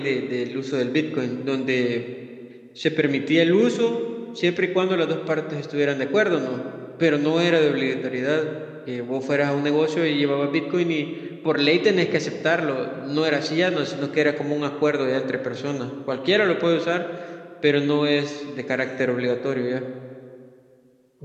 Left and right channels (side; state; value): both; identical; correlation 1.00